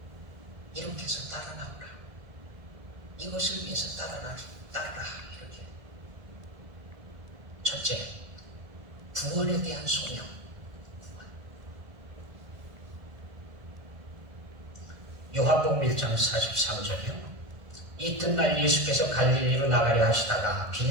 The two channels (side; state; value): left; late; 1.7 ms